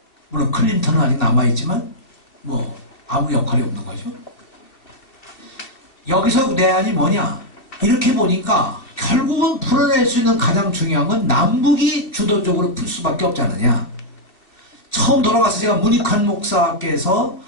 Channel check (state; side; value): late; right; 2.6 ms